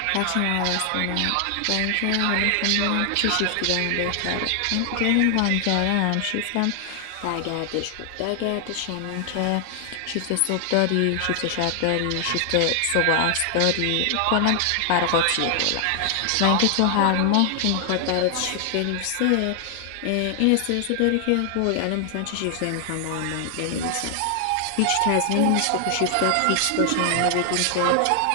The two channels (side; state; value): both; different; correlation 0.00